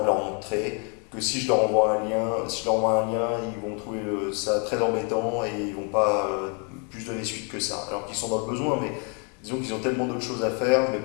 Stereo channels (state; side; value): quieter; right; 37.3 dB